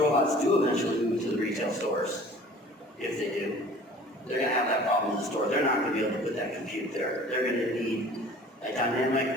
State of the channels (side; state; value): both; normal; correlation 0.47